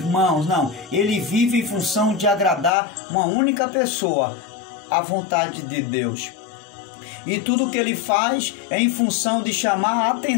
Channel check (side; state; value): right; drops out; at 2.7 s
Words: Não, ele vive em função de agradar uma única pessoa, a vontade de Deus. E tudo que ele faz é em função de chamar a